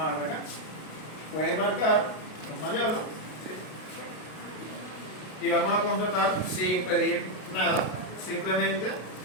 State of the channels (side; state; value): right; late; 33 ms